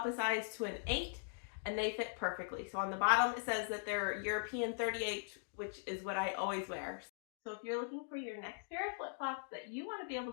a size to an 8, and they fit perfectly. So on the bottom, it says that they're European 38, which is what I always wear. So if you're looking for your next pair of flip-flops that you want to be able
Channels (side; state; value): right; silent; digital silence